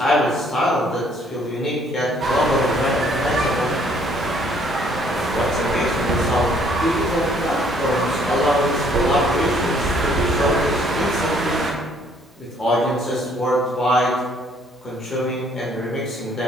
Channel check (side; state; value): both; normal; correlation 0.62